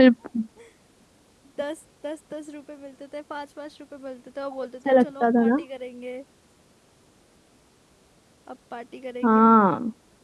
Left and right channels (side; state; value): both; identical; correlation 1.00